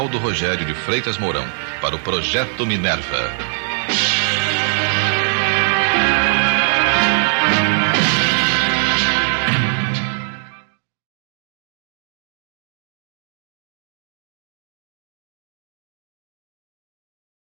Rogério de Freitas Mourão para o Projeto Minerva.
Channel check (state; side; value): silent; left; digital silence